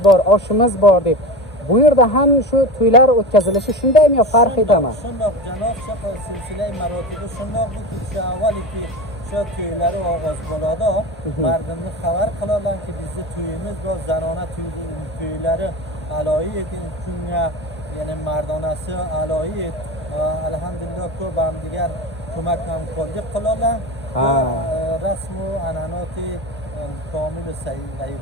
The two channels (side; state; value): both; normal; correlation 0.26